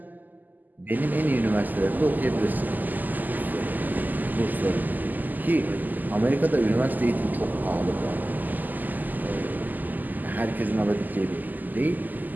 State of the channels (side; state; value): left; late; 0.084 ms